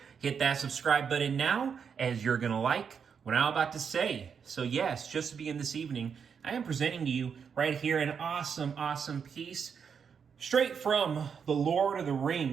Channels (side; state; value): left; quieter; 6.7 dB